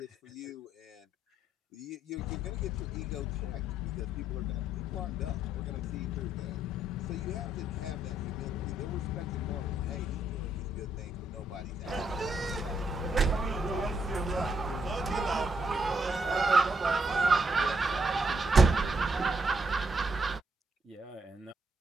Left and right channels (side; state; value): both; normal; correlation 0.75